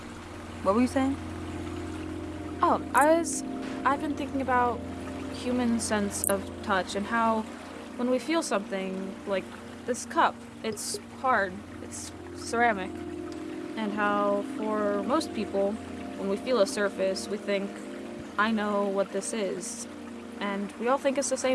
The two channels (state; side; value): identical; both; correlation 1.00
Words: What were you saying? Oh, I've been thinking about human sense of touch and how when we feel something like this cup, it's hard, it's ceramic, and how for most people, when we feel a surface, we think, I know what this is, and we all think it's the